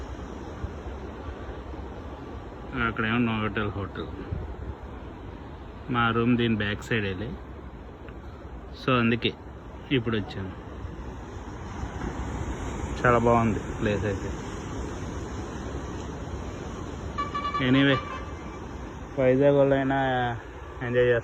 అక్కడేమో నోవోటల్ హోటల్. మా రూమ్ దీని బ్యాక్ సైడ్ వెళ్ళి, సో అందుకే ఇప్పుడు వచ్చాను. చాలా బాగుంది ప్లేస్ అయితే. ఎనీవే, వైజాగ్ వాళ్ళైనా ఎంజాయ్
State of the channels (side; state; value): both; identical; correlation 1.00